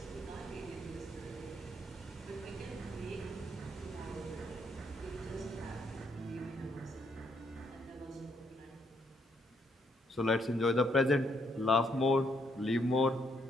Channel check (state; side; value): normal; both; correlation 0.73